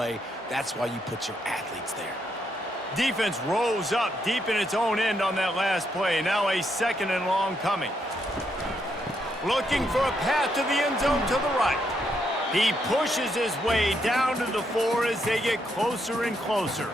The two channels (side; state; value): both; normal; correlation 0.77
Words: That's why you put your athletes there. Defense rose up deep in its own end on that last play. Now a 2nd and long coming. Looking for a path to the end zone to the right. He pushes his way down to the 4 as they get closer and closer.